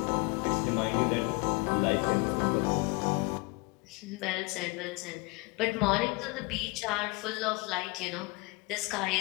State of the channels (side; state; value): right; quieter; 26.3 dB